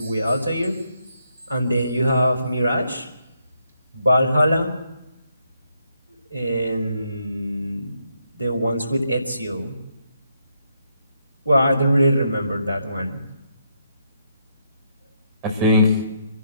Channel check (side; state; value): both; inverted; correlation -0.77